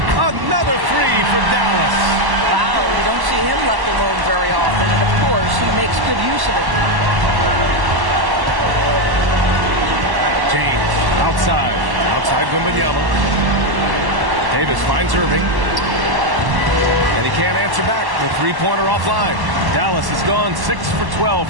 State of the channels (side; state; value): left; late; 1.1 ms